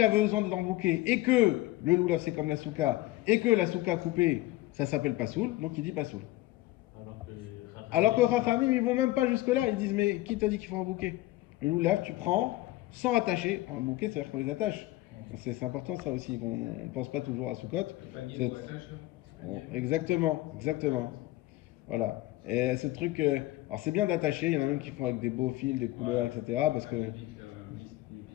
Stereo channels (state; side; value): quieter; right; 17.7 dB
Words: a besoin d'être en bouquet et que le lulav c'est comme la souka et que la souka coupée ça s'appelle pas soul, donc il dit pas soul. Alors que Chachamim, ils vont même pas jusque-là. Ils disent, mais qui t'a dit qu'il faut un bouquet? Le lulav, tu prends sans attacher. Un bouquet, c'est-à-dire qu'on les attache. C'est important ça aussi. On ne pense pas toujours à Soukot. Exactement. Voilà. Et ce truc, alors c'est bien d'attacher. Il y en a même qui font avec des beaux fils, des couleurs, etc. Parce que.